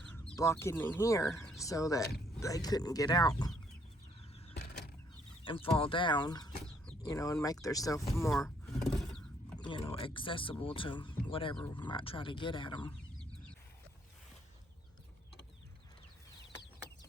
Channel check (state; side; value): normal; both; correlation 0.67